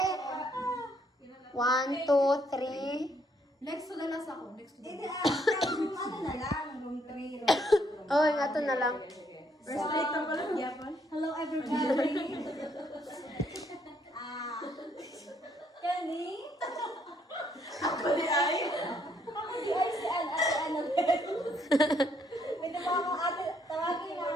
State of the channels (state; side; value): normal; both; correlation 0.70